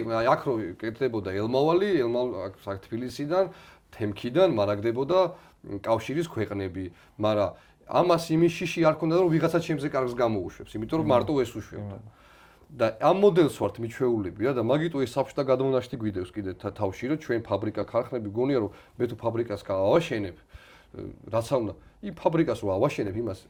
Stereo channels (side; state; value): both; identical; correlation 1.00